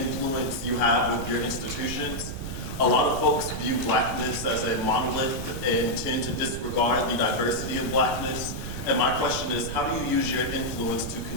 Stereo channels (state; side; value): noise; right; rumble, 8 dB below the sound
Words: you have with your institutions. A lot of folks view blackness as a monolith and tend to disregard the diversity of blackness. And my question is, how do you use your influence to